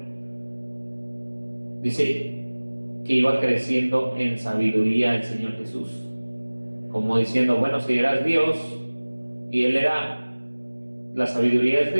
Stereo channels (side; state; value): both; inverted; correlation -1.00